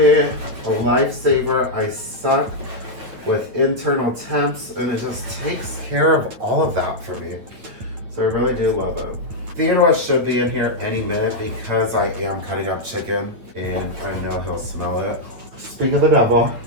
a lifesaver. I suck with internal temps, and it just takes care of all of that for me. So I really do love it. Theodore should be in here any minute because I am cutting up chicken, and I know he'll smell it. Speak of the devil.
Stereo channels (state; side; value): late; left; 9.1 ms